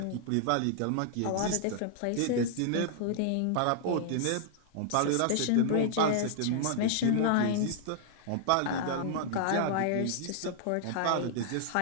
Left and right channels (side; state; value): both; different; correlation -0.01